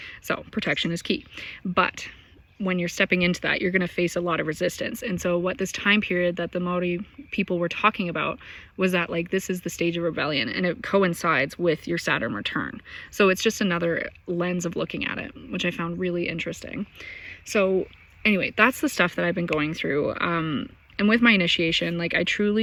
So protection is key. But when you're stepping into that, you're going to face a lot of resistance. And so what this time period that the Maori people were talking about was that, like, this is the stage of rebellion, and it coincides with your Saturn return. So it's just another lens of looking at it, which I found really interesting. So anyway, that's the stuff that I've been going through. And with my initiation, like, I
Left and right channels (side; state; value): both; identical; correlation 1.00